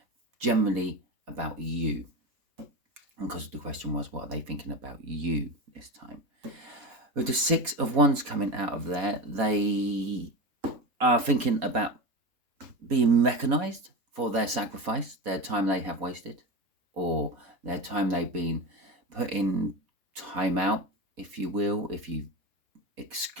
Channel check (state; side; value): late; left; 4.2 ms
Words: generally about you. And because the question was, what are they thinking about you this time? With the 6 of Wands coming out of there, they are thinking about being recognised for their sacrifice, their time they have wasted, or their time they've been putting time out, if you will, if you